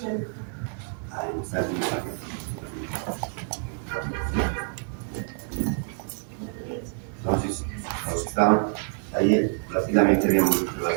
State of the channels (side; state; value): left; silent; 59 dB below the other